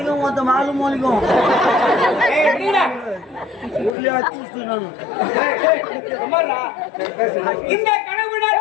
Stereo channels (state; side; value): drops out; right; at 4.0 s